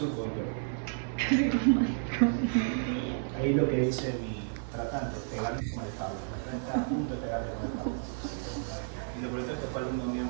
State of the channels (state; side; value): silent; left; 57 dB below the other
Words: del cuerpo. Ahí lo que dice mi tratante, pegarle con el cable. Está a punto de pegarle con el cable. Y lo por eso es que fue alumno mío